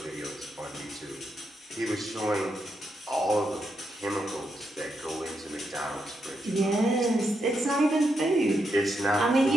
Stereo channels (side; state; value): both; normal; correlation 0.82